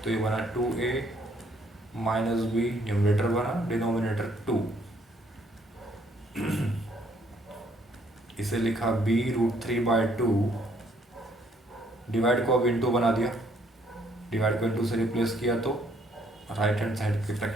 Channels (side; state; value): both; normal; correlation 0.66